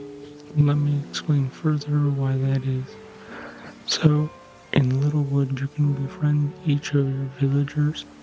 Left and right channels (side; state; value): both; identical; correlation 1.00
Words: let me explain further why that is. So in Littewood you can befriend each of your villagers,